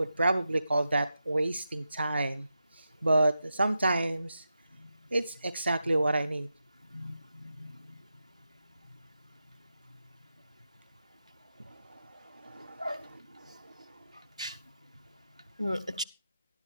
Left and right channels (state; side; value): inverted; both; correlation -0.89